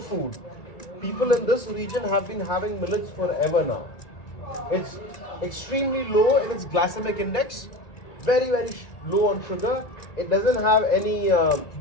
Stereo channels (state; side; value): late; right; 1.9 ms